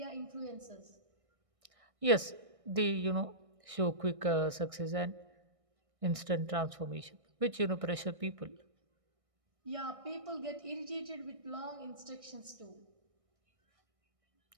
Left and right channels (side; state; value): left; late; 1.6 ms